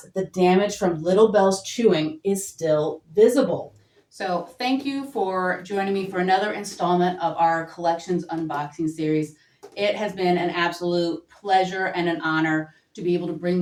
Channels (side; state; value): both; identical; correlation 1.00